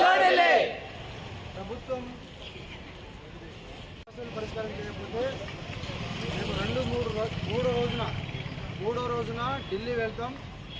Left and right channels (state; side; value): identical; both; correlation 1.00